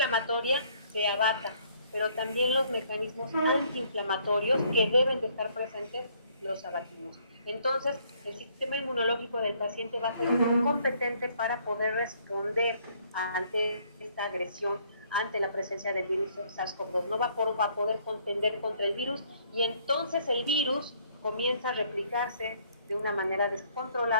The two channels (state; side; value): inverted; both; correlation -0.65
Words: se abata pero también los mecanismos antiinflamatorios que deben de estar presentes los abatimos. Entonces, el sistema inmunológico del paciente va a ser muy competente para poder responder ante esta agresión, ante la presencia del virus SARS-CoV-2. No va a poder contender contra el virus y entonces el virus comienza a replicarse de una manera